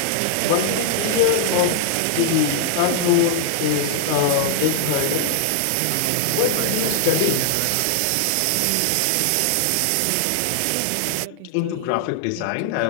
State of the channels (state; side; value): different; both; correlation -0.01